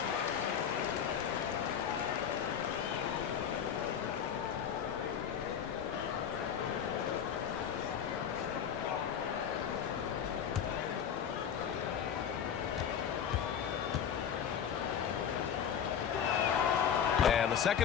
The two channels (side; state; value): right; quieter; 8.2 dB